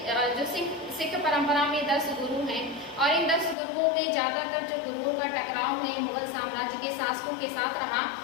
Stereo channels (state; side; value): drops out; right; at 3.6 s